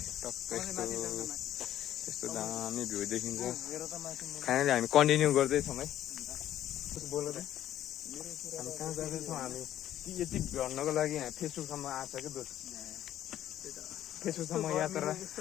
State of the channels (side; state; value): right; quieter; 12.1 dB